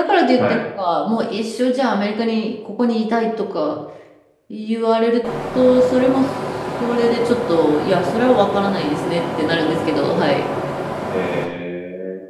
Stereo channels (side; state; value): both; identical; correlation 1.00